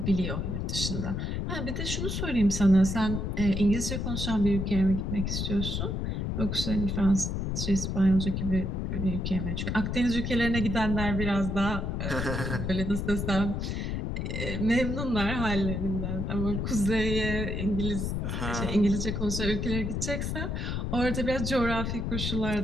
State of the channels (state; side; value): noise; left; rumble, 2 dB below the sound